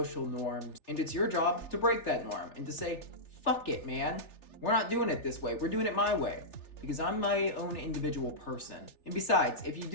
norms, and it's your job to break that norm and to say, fuck it, man. We're not doing it this way. We're doing it my way. Because I'm my own individual person. And besides, if you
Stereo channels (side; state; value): right; late; 3.4 ms